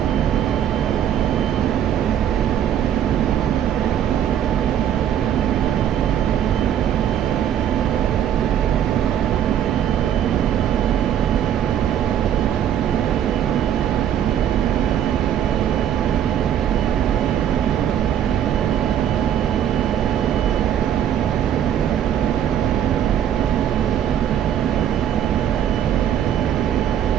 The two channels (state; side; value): quieter; left; 9.9 dB